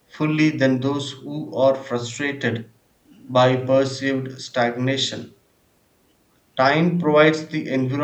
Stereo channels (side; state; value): both; identical; correlation 1.00